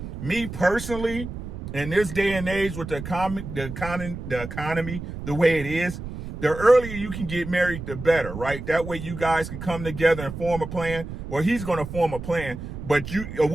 Me personally, in this day and age with the economy the way it is, the earlier you can get married, the better, right? That way you guys can come together and form a plan. Well, he's going to form a plan, but a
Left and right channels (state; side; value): noise; right; rumble, 9 dB below the sound